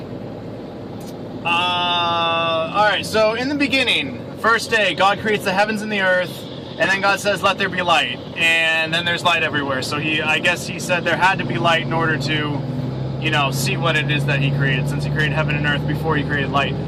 Alright, so in the beginning, first day, God creates the heavens and the earth, and then God says, let there be light. And then there's light everywhere. So I guess he said there had to be light in order to, see what it is that he created, since he created heaven and earth before he created light.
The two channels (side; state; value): both; identical; correlation 1.00